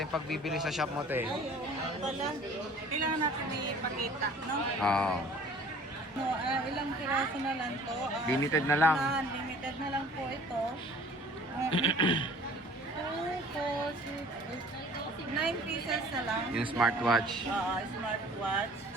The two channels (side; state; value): both; normal; correlation 0.50